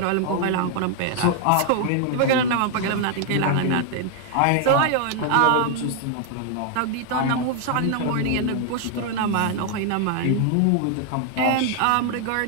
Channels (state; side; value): different; both; correlation 0.00